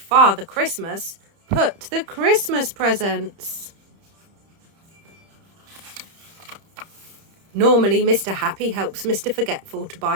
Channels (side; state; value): left; late; 31 ms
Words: Christmas put the Christmas presents? Normally, Mr. Happy helps Mr. Forgetful to